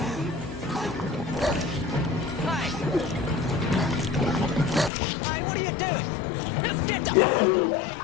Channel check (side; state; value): right; drops out; at 4.9 s